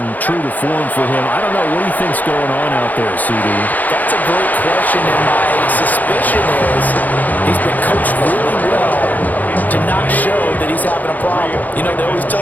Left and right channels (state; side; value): late; right; 0.082 ms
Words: true to form for him. I don't know, what do you think's going on out there, CD? That's a great question, and my suspicion is he's been coached really well to not show that he's having a problem. You know, they always tell